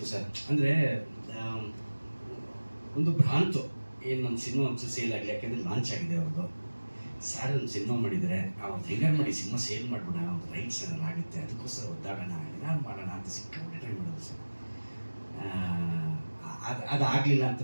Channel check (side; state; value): both; inverted; correlation -1.00